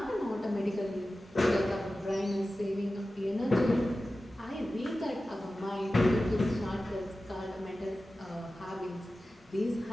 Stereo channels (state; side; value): normal; both; correlation 0.94